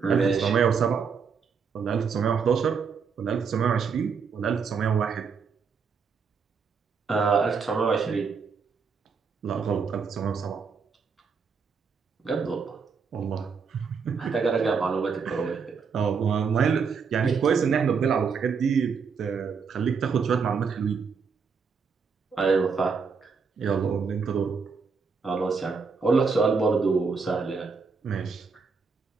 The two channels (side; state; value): left; quieter; 5.6 dB